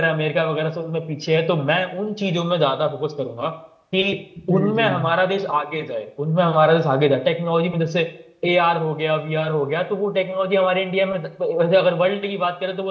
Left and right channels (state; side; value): identical; both; correlation 1.00